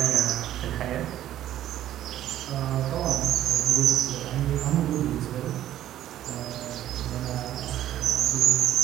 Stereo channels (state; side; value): quieter; left; 12.5 dB